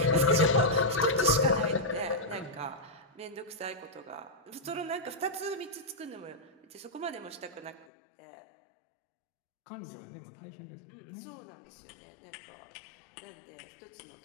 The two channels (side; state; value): right; drops out; at 7.9 s